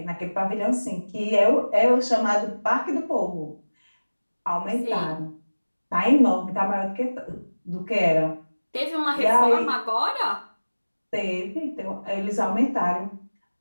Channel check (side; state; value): both; inverted; correlation -1.00